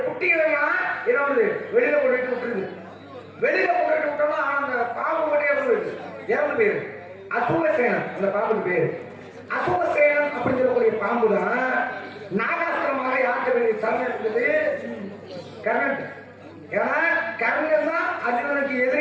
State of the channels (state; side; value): identical; both; correlation 1.00